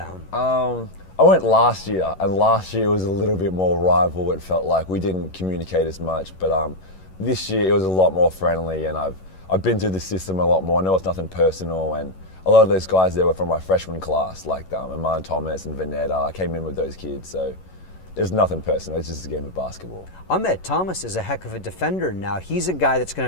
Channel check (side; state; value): right; late; 11 ms